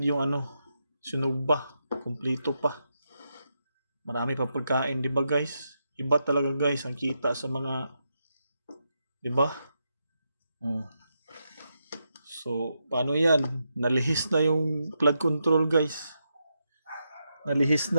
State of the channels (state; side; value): inverted; both; correlation -0.85